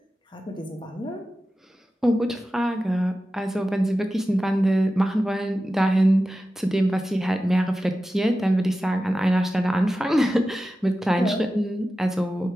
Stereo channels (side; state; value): both; normal; correlation 0.93